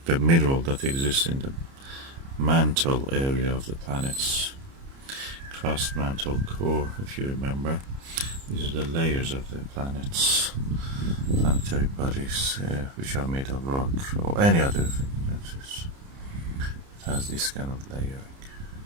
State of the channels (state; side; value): late; left; 30 ms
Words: the mineral that exists in the mantle area of the planet's crust, mantle, core, if you remember. These are the layers of the planet's planetary bodies, which are made of rock or any other thing that has this kind of layering.